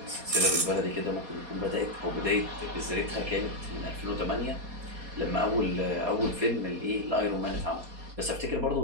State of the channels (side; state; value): left; late; 4.2 ms